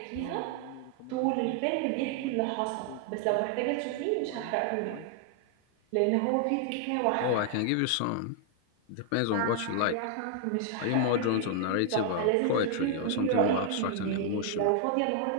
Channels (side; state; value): both; different; correlation 0.00